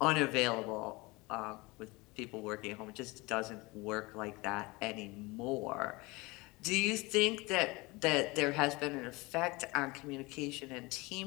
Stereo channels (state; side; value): quieter; right; 24.1 dB